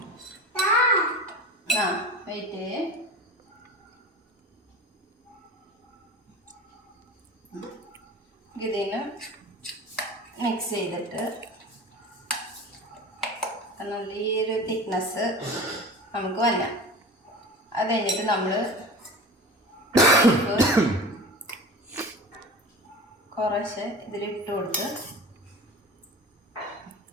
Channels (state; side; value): normal; both; correlation 0.34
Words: വെയിറ്റ്. ഇതിന് മിക്സ് ചെയ്തിട്ട് നല്ല ഈ ഒരു തിക്നെസ് നമുക്ക് വരാം. അത് കഴിഞ്ഞിട്ട് നമ്മൾ കുറച്ച് ഇതിലിട്ട് കൊടുത്ത്